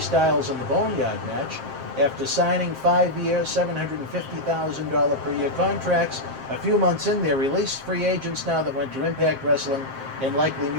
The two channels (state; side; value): late; left; 7.6 ms